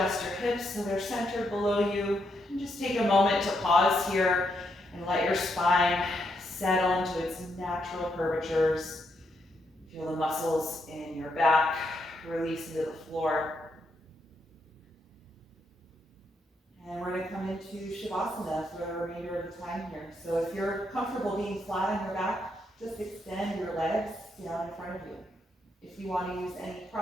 your hips so they're centered below you, and just take a moment to pause here and let your spine settle into its natural curvatures. Feel the muscles in your back release into the floor. And we're going to come into Shavasana for the remainder of the time here. So if you're comfortable being flat on your back, just extend your legs down in front of you. If you want to use any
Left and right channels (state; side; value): normal; both; correlation 0.79